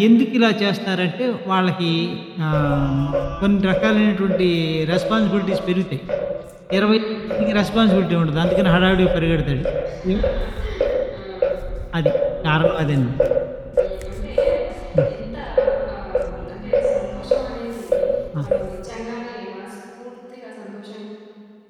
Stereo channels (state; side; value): identical; both; correlation 1.00